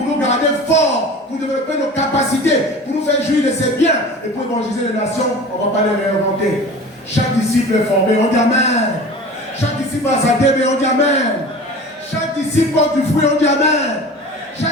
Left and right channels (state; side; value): normal; both; correlation 0.38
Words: nous garder forts, pour développer nos capacités, pour nous faire jouir de ses biens et pour évangéliser les nations, on ne va pas les réinventer. Chaque disciple est formé, on dit Amen. Chaque disciple a sa DB, on dit Amen. Chaque disciple porte du fruit, on dit Amen.